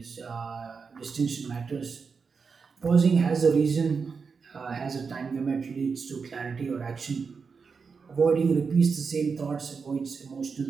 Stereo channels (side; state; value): left; quieter; 5.3 dB